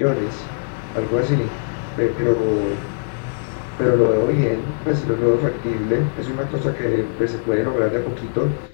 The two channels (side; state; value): right; silent; 64 dB below the other